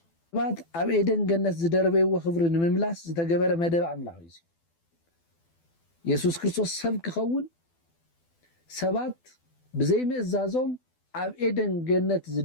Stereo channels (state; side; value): late; right; 12 ms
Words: ሰባት ኣብ ኤደን ገነት ዝደረበይዎ ክብሪ ንምምላስ ዝተገበረ መደብ ኣምላኽ እዩ ኢየሱስ ክርስቶስ ሰብ ክኸውን ሰባት ብዘይ ምእዛዞም ኣብ ኤደን ገነት